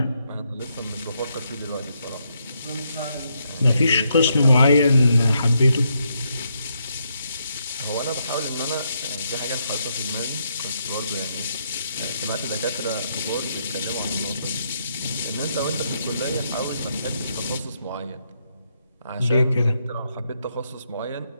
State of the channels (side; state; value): both; inverted; correlation -0.78